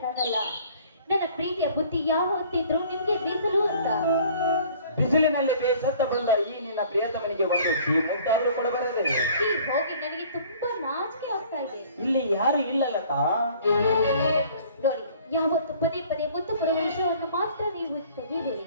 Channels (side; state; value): both; inverted; correlation -0.53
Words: ನನ್ನ ಪ್ರೀತಿಯ ಬುದ್ಧಿ ಯಾವ ಹೊತ್ತಿದ್ರು ನಿಮ್ಗೆ ಮೀಸಲು ಅಂತ. ಬಿಸಿಲಿನಲ್ಲಿ ಬೇಸತ್ತ ಬಂದ ಈ ನಿನ್ನ ಪ್ರಿಯತಮನಿಗೆ ಒಂದು ಮುದ್ದಾದರೂ ಕೊಡಬಾರದೆ. ಹೋಗಿ ನನಗೆ ತುಂಬಾ ನಾಚಿಕೆ ಆಗ್ತಾ ಇದೆ. ಇಲ್ಲಿ ಯಾರು ಇಲ್ಲ ಲತಾ. ನೋಡಿ, ಯಾವತ್ತು ಪದೇ ಪದೇ ಮುತ್ತು ಕೊಡುವ ವಿಷಯವನ್ನು ಮಾತ್ರ ನೀವು ತೆಗೆಯಬೇಡಿ.